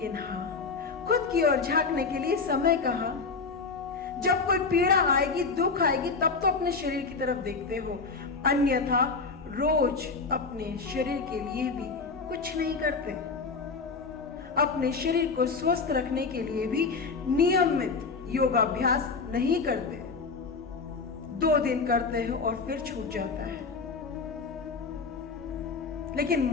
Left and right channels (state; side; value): quieter; right; 4.5 dB